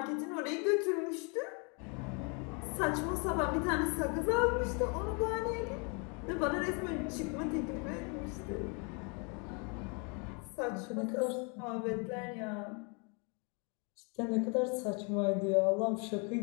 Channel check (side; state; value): right; quieter; 34.6 dB